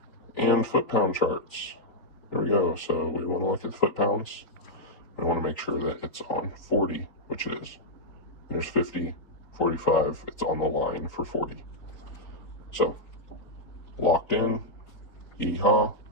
and foot-pound charts. There we go. So we want to look at the foot-pounds. We want to make sure that it's on 40, which it is. There's 50, 45. It's on the line for 40. So locked in. Yeehaw.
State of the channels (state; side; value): late; right; 3.8 ms